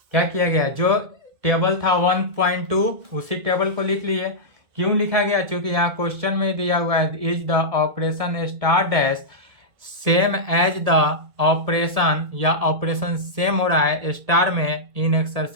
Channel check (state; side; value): late; left; 1.7 ms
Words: क्या किया गया, जो टेबल था 1.2 उसी टेबल को लिख लिए। क्यों लिखा गया, क्योंकि यहाँ क्वेश्चन में दिया हुआ है is the operation star dash same as the operation, या ऑपरेशन सेम हो रहा है स्टार में इन